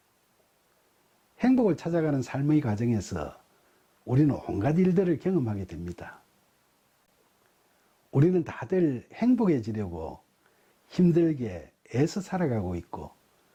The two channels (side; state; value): both; identical; correlation 1.00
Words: 행복을 찾아가는 삶의 과정에서 우리는 온갖 일들을 경험하게 됩니다. 우리는 다들 행복해지려고 힘들게 애써 살아가고 있고,